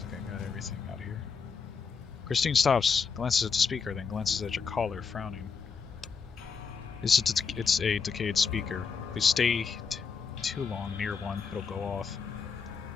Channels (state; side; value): quieter; right; 5.8 dB